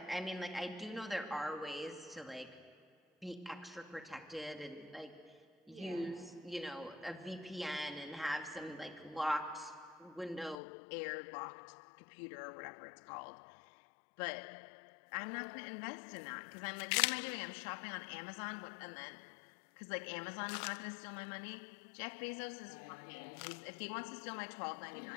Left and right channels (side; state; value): right; drops out; at 10.6 s